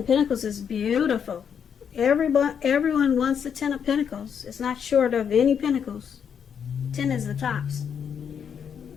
Pentacles is beautiful. Everyone wants the Ten of Pentacles. It's not short of any pentacles. 10 is the tops.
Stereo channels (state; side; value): quieter; right; 7.6 dB